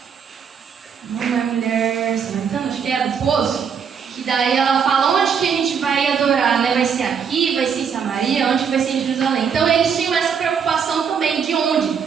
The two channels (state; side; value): quieter; left; 6.9 dB